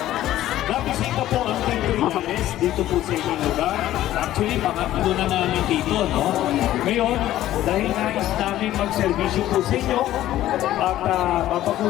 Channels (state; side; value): quieter; right; 13.8 dB